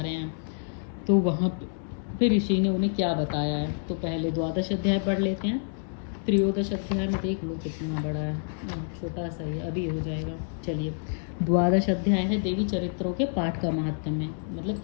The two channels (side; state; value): right; silent; 59 dB below the other